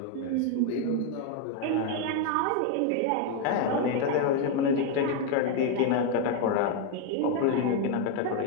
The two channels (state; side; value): different; both; correlation 0.01